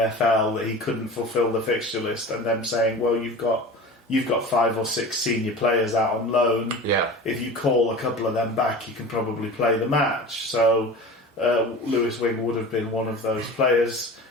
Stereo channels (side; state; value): both; normal; correlation 0.36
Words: FL that he couldn't fulfil the fixture list, and them saying, "Well, you've got 5 or 6 senior players out on loan. Yeah. If you call a couple of them back, you can probably play the match." So Lewis Wing would have been one of those players.